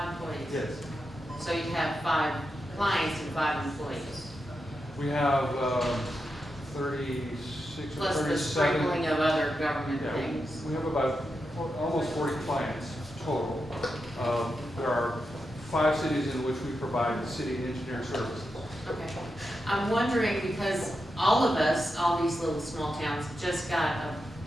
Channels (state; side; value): normal; both; correlation 0.87